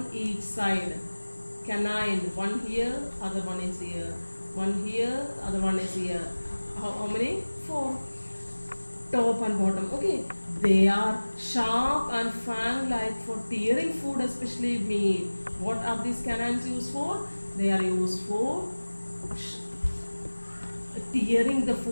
each side. Canine, one here, other one is here. One here, other one is here. How many? 4. top and bottom. Okay, they are sharp and fang-like for tearing food, especially meat. What are these canines used for? They are used for tearing the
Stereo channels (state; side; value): inverted; both; correlation -1.00